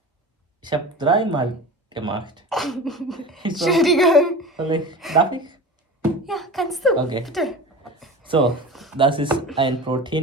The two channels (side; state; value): both; normal; correlation 0.33